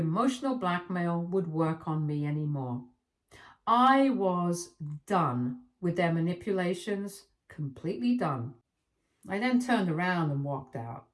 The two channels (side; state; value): both; identical; correlation 1.00